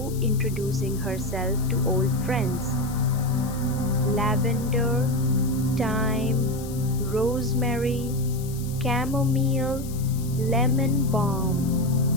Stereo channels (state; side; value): noise; left; hiss, 16 dB below the sound